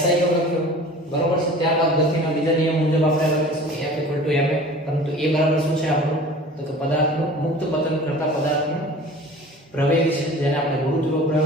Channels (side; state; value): both; normal; correlation 0.43